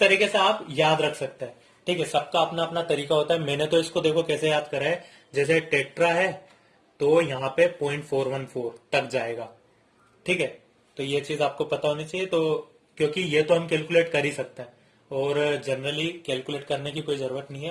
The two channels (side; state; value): both; identical; correlation 1.00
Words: से आप याद रख सकते हैं। ठीक है, सबका अपना अपना तरीका होता है। मैंने तो इसको देखो कैसे याद करा है, जैसे टेट्रा है तो यहाँ पे 0.414 तक जाएगा। ठीक है, तो ये चीज आपको पता होनी चाहिए। तो क्योंकि ये तो हम कैलकुलेट कर ही सकते हैं और जनरली कैलकुलेट करने की कोई जरूरत नहीं है,